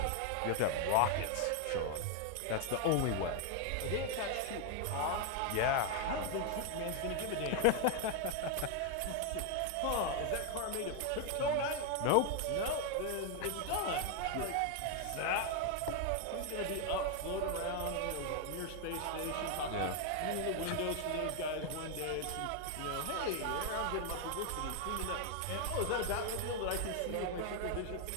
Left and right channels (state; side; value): different; both; correlation 0.00